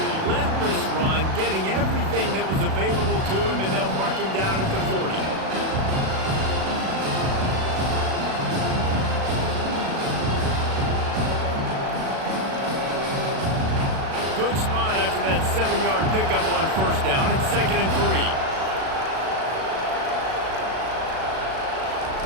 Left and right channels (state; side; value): late; left; 37 ms